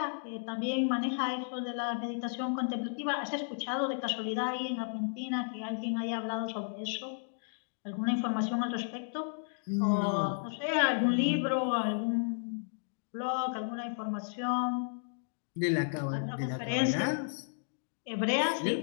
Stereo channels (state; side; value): silent; right; digital silence